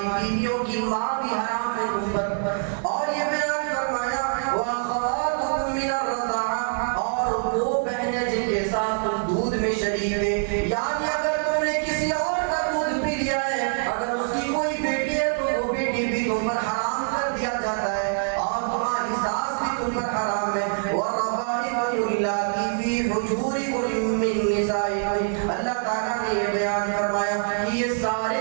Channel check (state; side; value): silent; left; digital silence